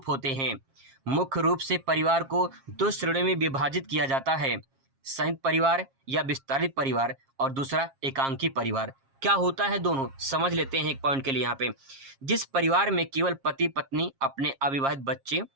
होते हैं। मुख्य रूप से परिवार को 2 श्रेणियों में विभाजित किया जाता है, संयुक्त परिवार या विस्तारित परिवार, और दूसरा एकांकी परिवार। क्या होता है दोनों, समझ लेते हैं एक पॉइंट के लिए। यहाँ पे जिस परिवार में केवल पति पत्नी, अपने अविवाहित बच्चे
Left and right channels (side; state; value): left; late; 7.4 ms